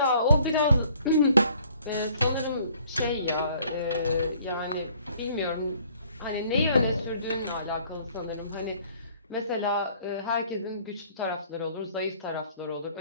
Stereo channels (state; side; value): inverted; both; correlation -0.58